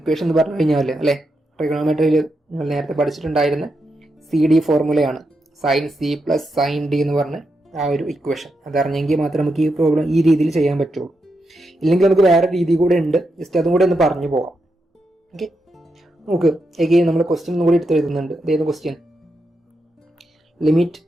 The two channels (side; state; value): both; normal; correlation 0.85